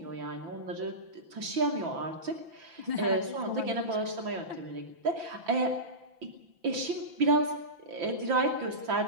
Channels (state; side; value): late; left; 5.9 ms